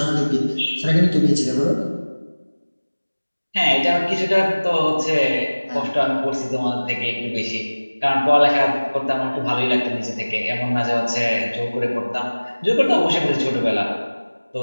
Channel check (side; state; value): both; inverted; correlation -1.00